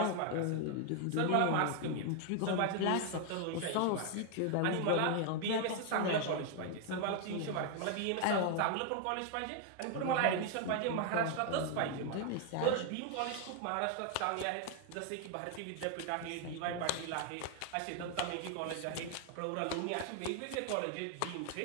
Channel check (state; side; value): different; both; correlation 0.00